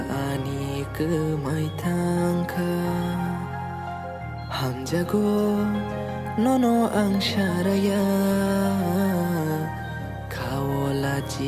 ani ke mai tangka Ham jago nono ang syaraya Kawola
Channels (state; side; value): identical; both; correlation 1.00